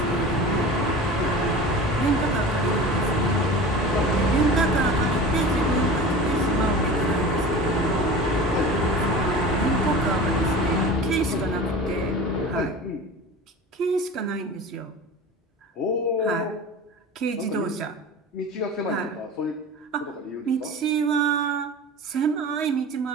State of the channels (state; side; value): normal; both; correlation 0.35